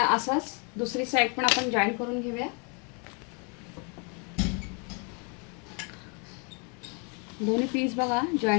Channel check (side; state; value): right; quieter; 35.6 dB